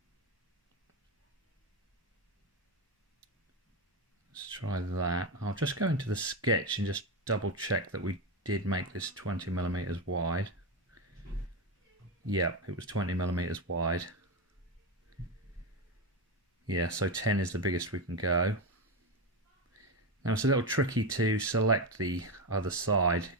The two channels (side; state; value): both; normal; correlation 0.14